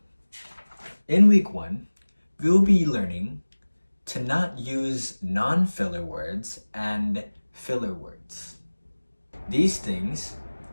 in week 1, we'll be learning to not use non-filler words and filler words. These things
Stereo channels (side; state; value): both; inverted; correlation -1.00